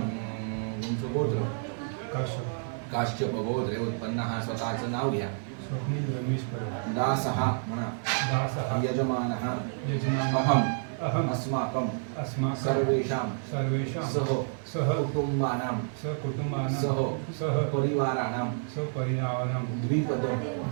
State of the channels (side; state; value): left; silent; 56 dB below the other